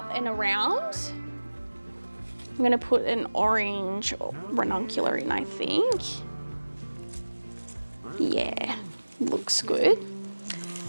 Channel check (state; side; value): inverted; both; correlation -1.00